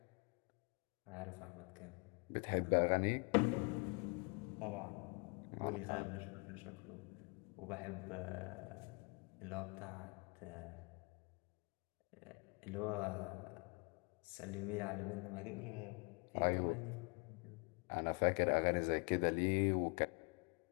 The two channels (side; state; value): right; quieter; 32.4 dB